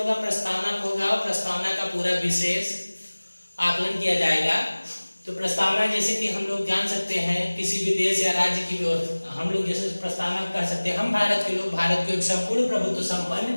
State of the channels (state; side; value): inverted; both; correlation -1.00